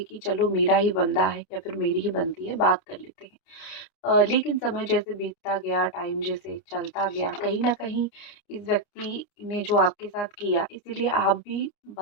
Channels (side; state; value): right; late; 29 ms